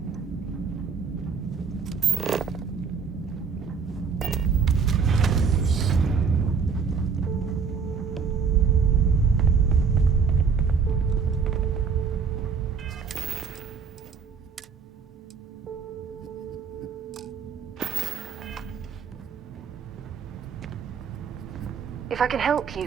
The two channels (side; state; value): left; quieter; 5.9 dB